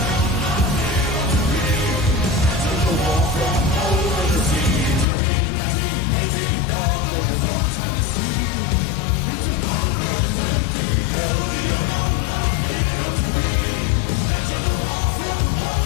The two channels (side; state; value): right; drops out; at 5.1 s